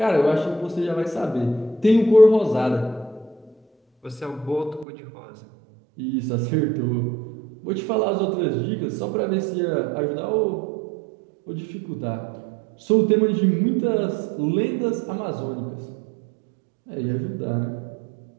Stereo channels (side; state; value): left; drops out; at 4.9 s